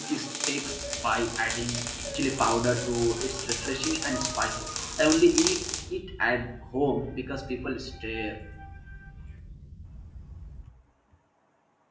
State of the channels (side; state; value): both; identical; correlation 1.00